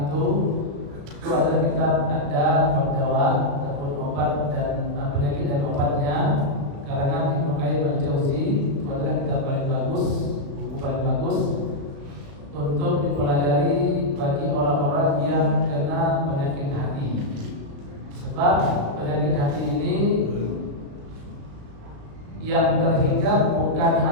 itu adalah kitab Ad-Dawa ataupun obat dan penyakit dan obatnya karangan Ibnu Qayyim Al-Jauzi. Itu adalah kitab paling bagus, buku paling bagus untuk dipelajari bagi orang-orang yang kena penyakit hati. Sebab penyakit hati ini yang terhingga bukan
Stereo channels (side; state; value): left; late; 36 ms